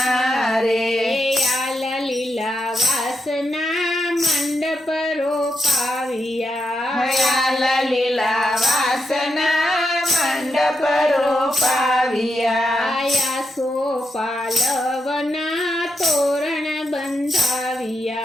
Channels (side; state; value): both; normal; correlation 0.84